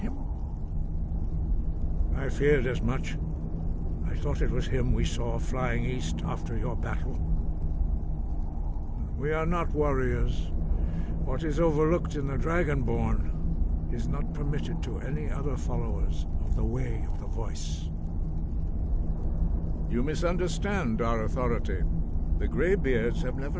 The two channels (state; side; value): identical; both; correlation 1.00